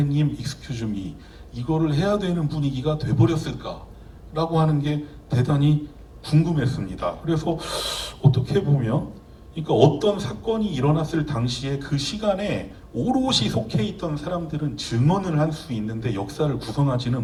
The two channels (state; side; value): identical; both; correlation 1.00